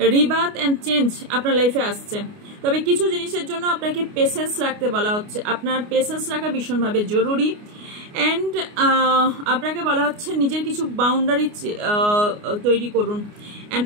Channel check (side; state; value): left; late; 29 ms